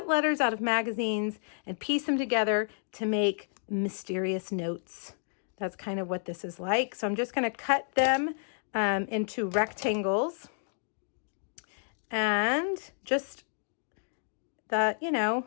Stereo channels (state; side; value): silent; right; digital silence